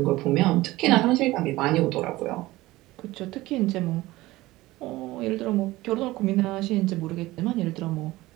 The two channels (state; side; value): quieter; left; 18.4 dB